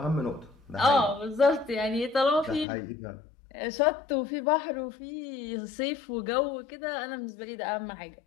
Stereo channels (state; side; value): drops out; right; at 2.7 s